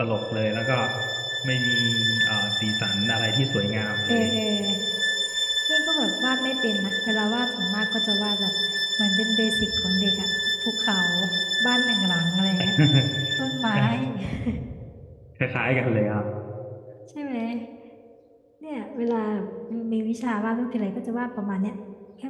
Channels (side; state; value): both; identical; correlation 1.00